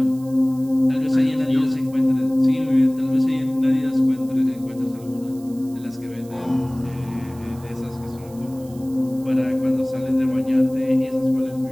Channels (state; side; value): noise; right; hiss, 24 dB below the sound